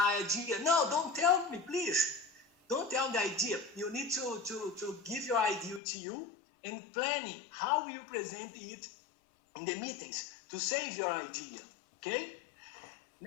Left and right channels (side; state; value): right; drops out; at 5.8 s